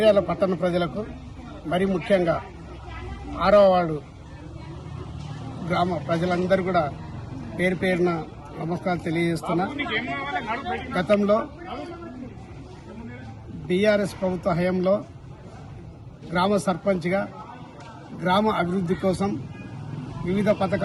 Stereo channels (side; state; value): both; identical; correlation 1.00